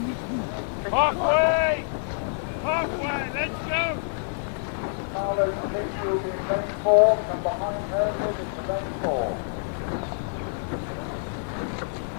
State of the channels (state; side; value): silent; right; digital silence